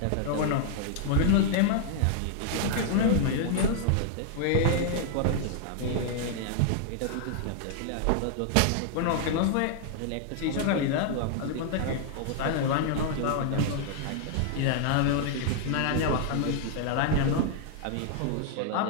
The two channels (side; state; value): both; different; correlation 0.00